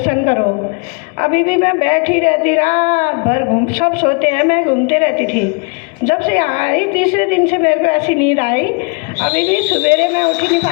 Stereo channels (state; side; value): quieter; right; 34.1 dB